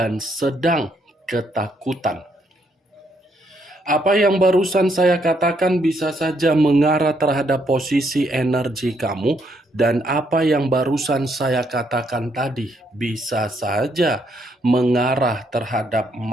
sedang ketakutan. Apa yang barusan saya katakan bisa saja mengarah terhadap posisi energi kamu, dan apa yang barusan saya katakan tadi bisa saja mengarah terhadap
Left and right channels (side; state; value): both; normal; correlation 0.73